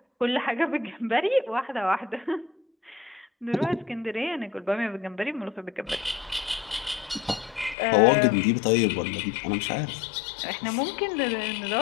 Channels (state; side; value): drops out; right; at 7.8 s